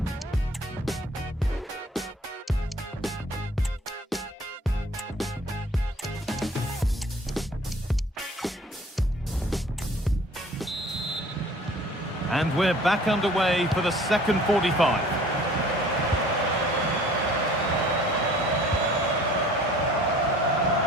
And we're back underway for the second 45.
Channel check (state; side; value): normal; both; correlation 0.51